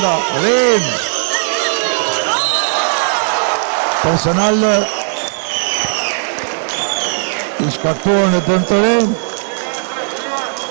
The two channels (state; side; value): silent; left; 58 dB below the other